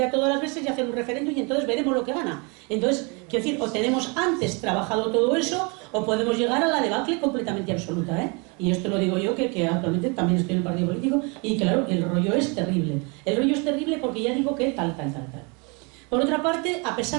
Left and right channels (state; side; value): quieter; left; 31.6 dB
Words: a todas las veces y hacer un referéndum y entonces veremos lo que gana. Entonces, quiero decir, o tenemos antes trabajado todo eso, o podemos llegar a la debacle completamente absoluta, ¿eh? Y esto lo digo yo, que actualmente también estoy en el partido político, y claro, el rollo es terrible. El rollo es terrible porque ya digo que tal. Por otra parte, a